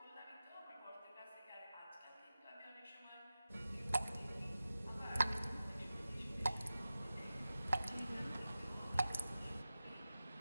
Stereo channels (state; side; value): inverted; both; correlation -0.94